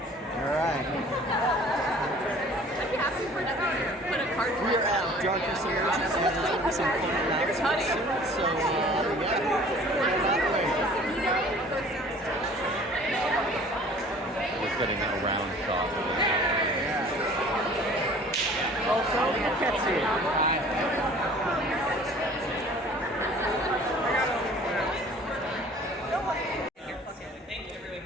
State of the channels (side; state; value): both; normal; correlation 0.49